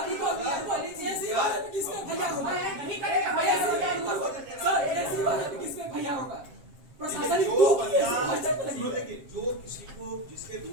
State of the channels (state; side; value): late; left; 7.5 ms